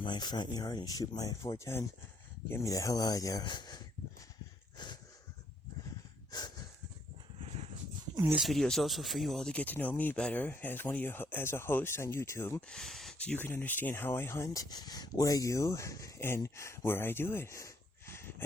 my front yard and shoot my .410, get me the hell out of there. And this video is also for you all to get to know me better as a host on YouTube, so you can understand how I hunt, what I do, and where I do it.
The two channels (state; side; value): normal; both; correlation 0.70